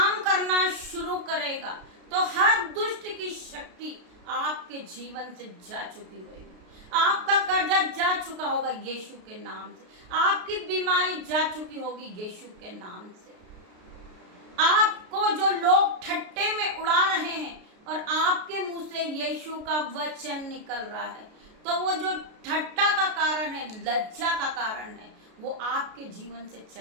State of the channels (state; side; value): late; left; 33 ms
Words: करना शुरू करेगा तो हर दुष्ट की शक्ति आपके जीवन से जा चुकी होगी। आपका कर्जा जा चुका होगा यीशु के नाम से, आपकी बीमारी जा चुकी होगी यीशु के नाम से। आपको जो लोग ठट्टे में उड़ा रहे हैं और आपके मुंह से यीशु का वचन निकल रहा है, तो वो जो ठट्टा का कारण है, लज्जा का कारण है, वो आपके जीवन से